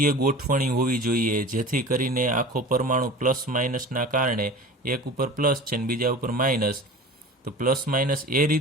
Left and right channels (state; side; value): normal; both; correlation 0.37